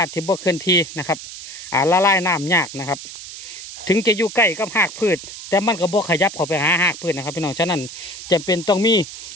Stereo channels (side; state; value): right; noise; hiss, 12 dB below the sound